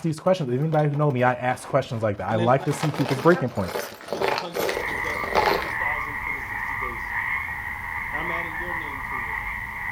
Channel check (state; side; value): identical; both; correlation 1.00